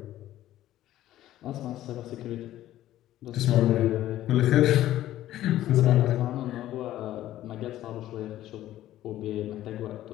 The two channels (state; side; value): quieter; right; 13.7 dB